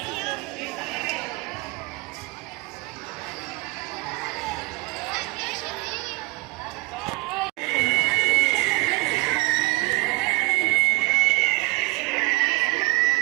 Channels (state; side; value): quieter; left; 24.5 dB